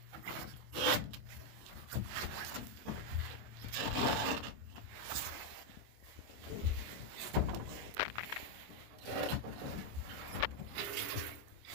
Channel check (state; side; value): late; left; 27 ms